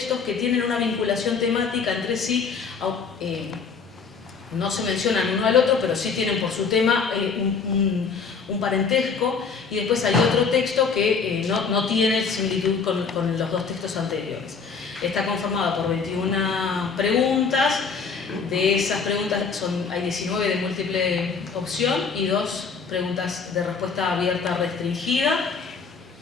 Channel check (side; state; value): right; quieter; 5.4 dB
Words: que tienen una vinculación temática entre sí. No se mencionan uno al otro, pero sí tienen por su tema un parentesco, y después hay otro texto que no tiene similitud con los 2 textos anteriores. Está conformada por 21 preguntas. De esas preguntas hay 19 de múltiple opción y 2 preguntas de respuesta abierta restringida.